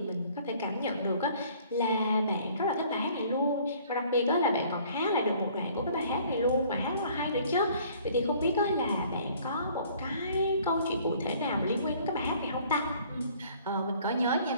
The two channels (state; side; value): inverted; both; correlation -0.56